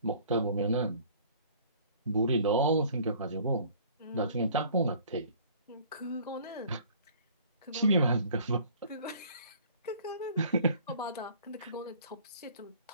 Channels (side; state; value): both; inverted; correlation -0.52